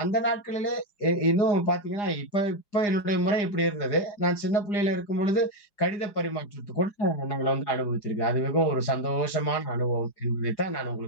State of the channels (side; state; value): right; late; 4.9 ms